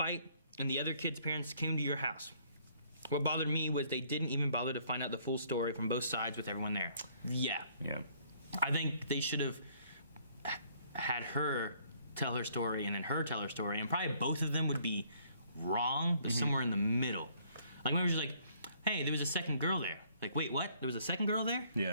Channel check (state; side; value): inverted; both; correlation -0.63